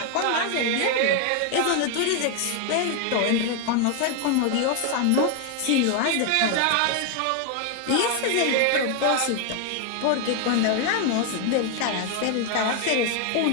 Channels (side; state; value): both; different; correlation 0.01